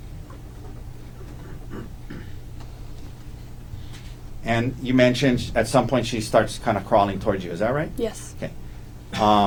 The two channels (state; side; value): identical; both; correlation 1.00